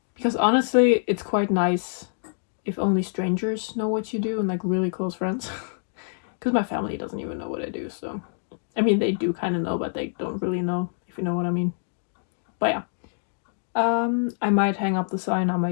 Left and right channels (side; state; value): right; silent; digital silence